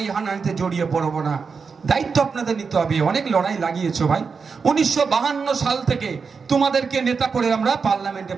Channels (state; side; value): quieter; left; 5.3 dB